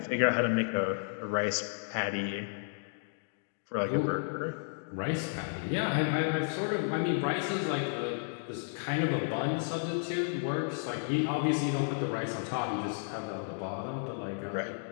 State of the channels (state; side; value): silent; right; digital silence